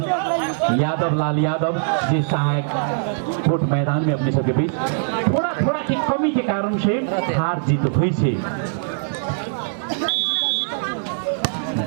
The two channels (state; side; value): silent; left; digital silence